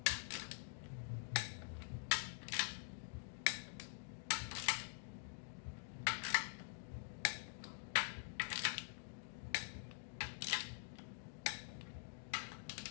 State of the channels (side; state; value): right; silent; digital silence